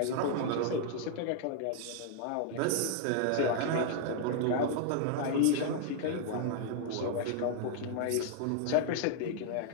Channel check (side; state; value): both; different; correlation 0.00